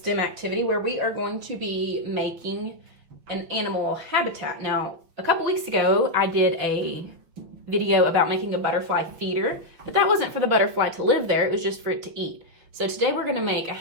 activity where we are going to be making an animal habitat. Now, a couple weeks ago, I did a video about making a butterfly feeder, but that wasn't for the butterfly to live there, it was just for it to eat. So today we're gonna make a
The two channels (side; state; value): left; late; 5.9 ms